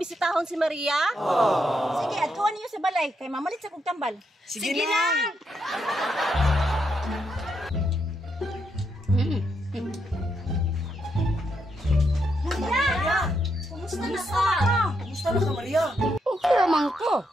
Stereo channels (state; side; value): normal; both; correlation 0.80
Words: si Maria? Sige, atuan niyo sa balay kay mamalit sa kog tambal. Sige, na. Maria! Kumusta na ka? Kumusta na ka, Maria? Okay naman ko.